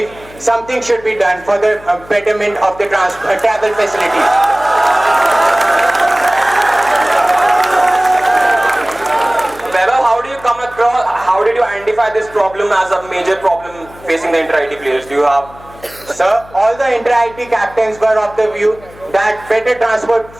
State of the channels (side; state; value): left; noise; hum, 22 dB below the sound